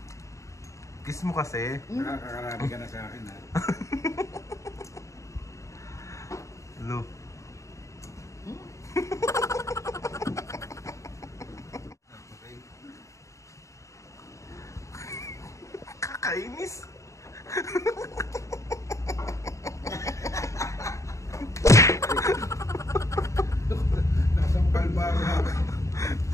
Kiss mo kasi. Nakakarami ka na sa akin, ha? Hello. Kakainis. Nasampal ba ako?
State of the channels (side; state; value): right; late; 0.15 ms